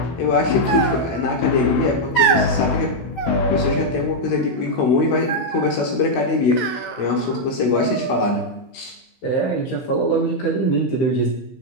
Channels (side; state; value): right; late; 16 ms